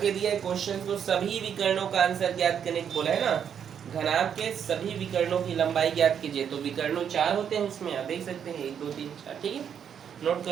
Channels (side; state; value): left; quieter; 8.2 dB